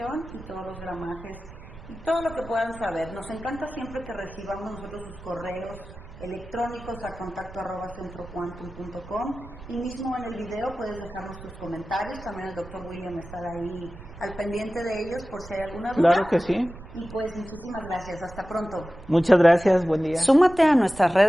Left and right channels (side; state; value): right; noise; rumble, 16 dB below the sound